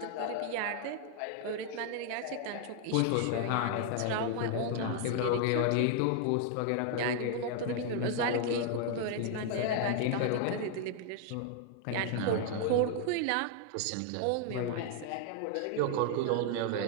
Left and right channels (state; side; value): different; both; correlation 0.00